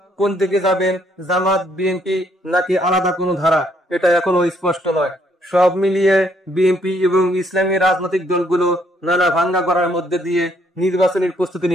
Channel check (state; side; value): normal; both; correlation 0.69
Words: কোন দিকে যাবেন, জামাত, বিএনপি নাকি আলাদা কোনো ধারা, এটা এখনো স্পষ্ট নয়। সব মিলিয়ে বিএনপি এবং ইসলামী রাজনৈতিক দলগুলো নানা ভাঙ্গা করার মধ্যে দিয়ে নির্বাচনের প্রস্তুতি